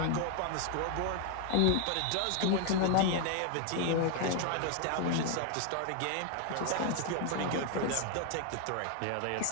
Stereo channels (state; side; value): different; both; correlation 0.00